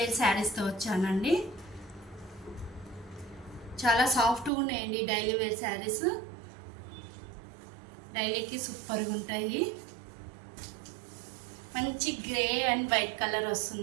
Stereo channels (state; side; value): drops out; left; at 4.5 s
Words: శారీస్తో వచ్చానండి. చాలా సాఫ్ట్గా ఉన్నాయండి డైలీ వేర్ శారీస్. డైలీకి సూపర్గా ఉంటాయి. మంచి గ్రే అండ్ వైట్ కలర్